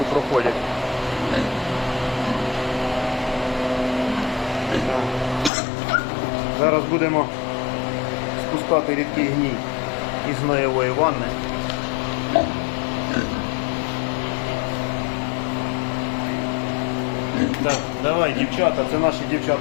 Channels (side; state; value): right; drops out; at 5.5 s